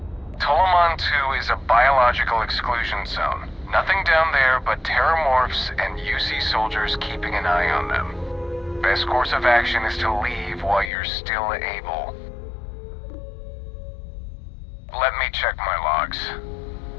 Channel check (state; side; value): drops out; right; at 10.9 s